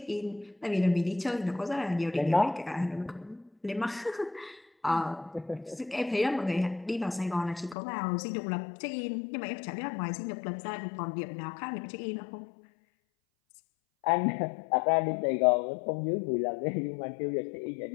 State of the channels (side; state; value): right; drops out; at 7.8 s